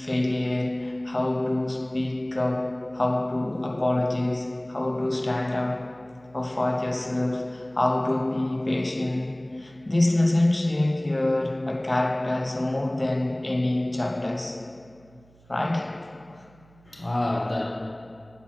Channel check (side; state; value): right; noise; hum, 28 dB below the sound